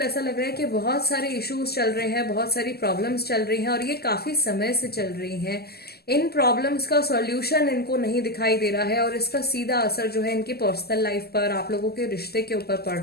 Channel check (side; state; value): right; late; 0.46 ms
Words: ऐसा लग रहा है कि बहुत सारे इश्यूज चल रहे हैं, बहुत सारी प्रॉब्लम्स चल रही हैं, और ये काफी समय से चल रही हैं। इन प्रॉब्लम्स का सॉल्यूशन इनको नहीं दिखाई दे रहा है, और इसका सीधा असर जो है इनकी पर्सनल लाइफ पर, आप लोगों के रिश्ते के ऊपर पड़